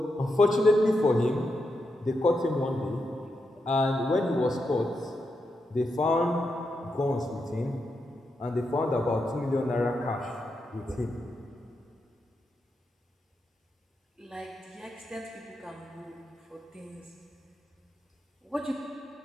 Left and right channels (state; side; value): normal; both; correlation 0.85